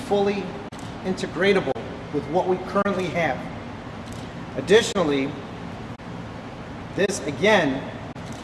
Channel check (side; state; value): both; identical; correlation 1.00